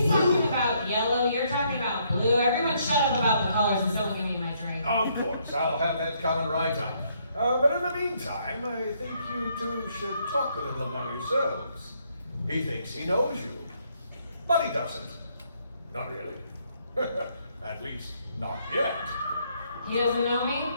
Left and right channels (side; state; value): both; inverted; correlation -0.71